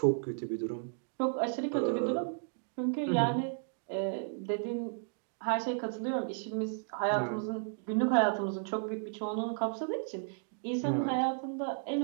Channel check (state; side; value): silent; left; digital silence